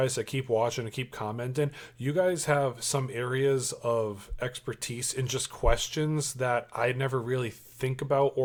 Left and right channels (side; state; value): both; identical; correlation 1.00